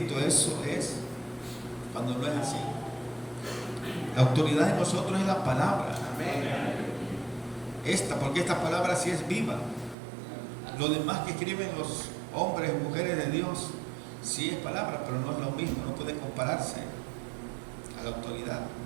eso es, cuando no es así. La autoridad de nosotros es la palabra. Porque esta palabra sí es viva. Lo demás que escriben los hombres y mujeres de Dios, sí es palabra, pero no es lo mismo, no puede compararse a la autoridad.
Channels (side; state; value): left; drops out; at 10.0 s